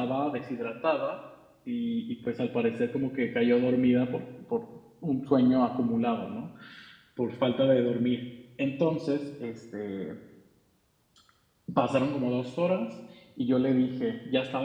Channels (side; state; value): both; identical; correlation 1.00